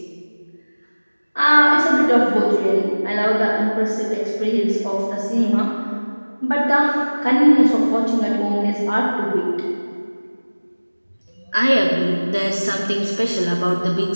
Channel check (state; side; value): inverted; both; correlation -1.00